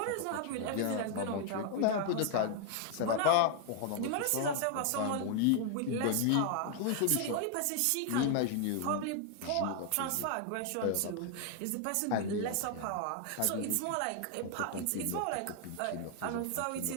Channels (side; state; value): both; different; correlation 0.00